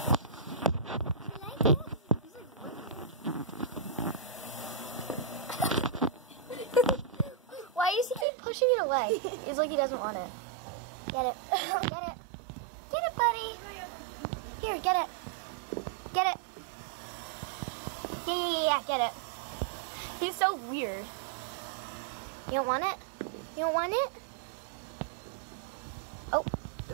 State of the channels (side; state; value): left; drops out; at 8.2 s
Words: Why does he keep pushing it away? It's like he doesn't want it. Get it. Get it. Get it, buddy. Here, get it. Get it. Yeah, get it. He's so weird. You don't want it? You don't want it? Oh. I